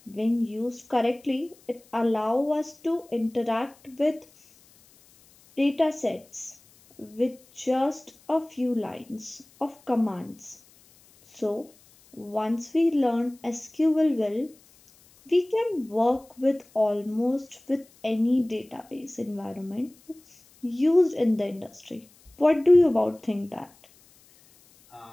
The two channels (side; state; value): left; noise; hiss, 28 dB below the sound